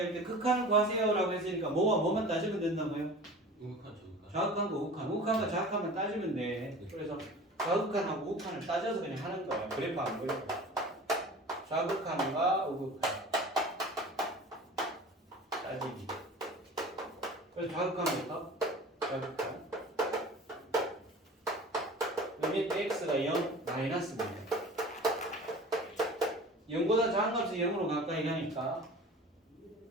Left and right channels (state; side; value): normal; both; correlation 0.40